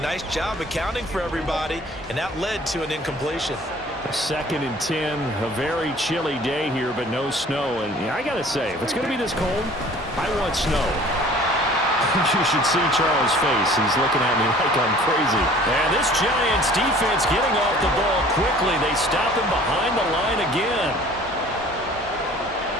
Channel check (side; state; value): both; normal; correlation 0.50